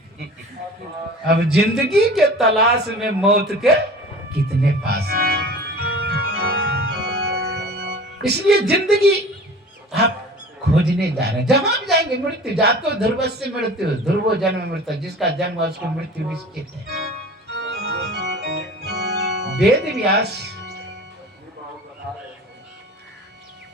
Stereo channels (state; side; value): normal; both; correlation 0.40